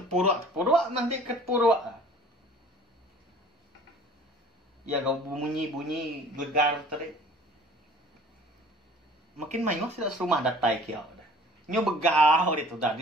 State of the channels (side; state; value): both; normal; correlation 0.49